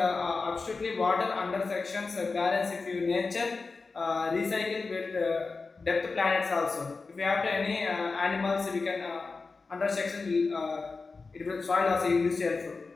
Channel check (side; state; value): right; quieter; 4.1 dB